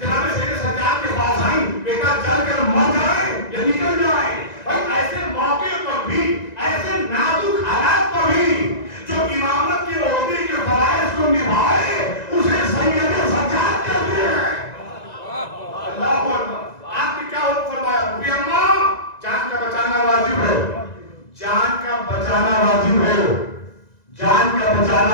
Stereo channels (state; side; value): late; right; 1.9 ms